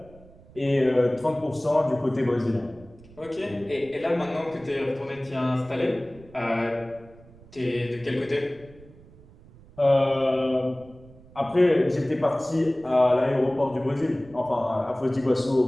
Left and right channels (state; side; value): noise; right; rumble, 23 dB below the sound